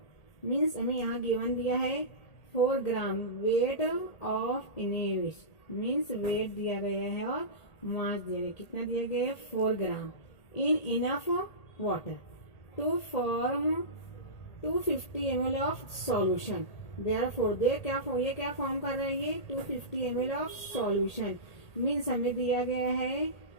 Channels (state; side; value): late; right; 1.8 ms